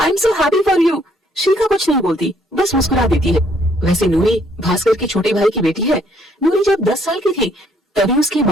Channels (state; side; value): normal; both; correlation 0.66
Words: am so happy for you. Shikha कुछ नहीं बोलती, बस मुस्कुरा देती है। वैसे नूरी भास्कर के छोटे भाई की बेटी है। नूरी जब 10 साल की थी तभी उसके